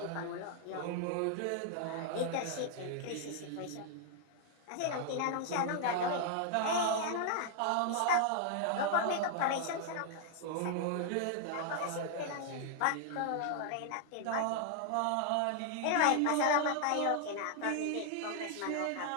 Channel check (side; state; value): both; different; correlation 0.00